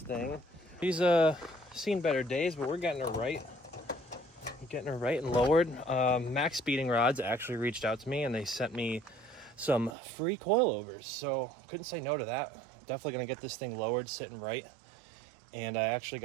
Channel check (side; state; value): left; drops out; at 10.0 s